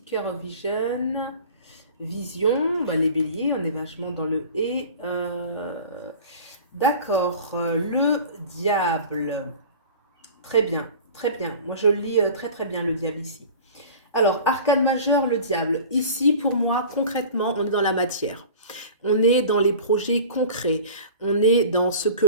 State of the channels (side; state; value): both; inverted; correlation -0.40